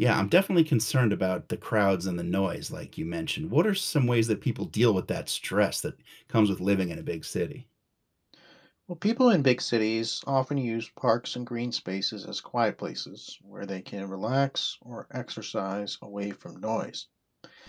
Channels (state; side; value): identical; both; correlation 1.00